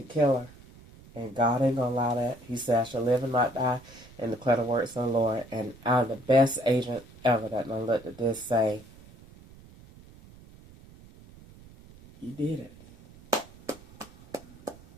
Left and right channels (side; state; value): right; noise; rumble, 22 dB below the sound